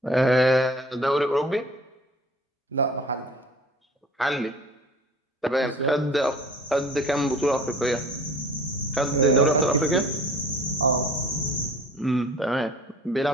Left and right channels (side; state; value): both; normal; correlation 0.46